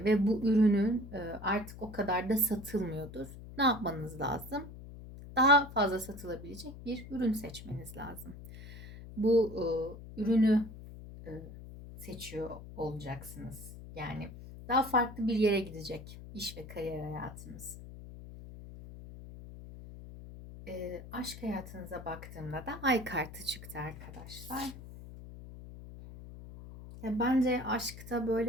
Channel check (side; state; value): left; noise; hum, 14 dB below the sound